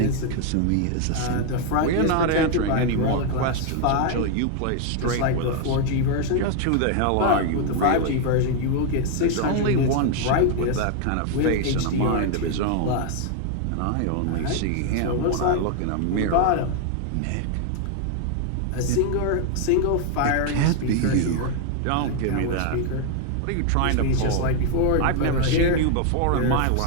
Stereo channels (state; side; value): different; both; correlation 0.00